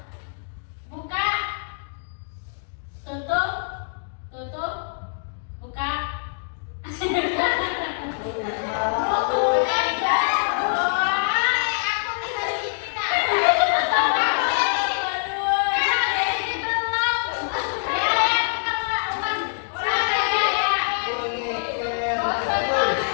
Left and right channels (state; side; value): silent; right; digital silence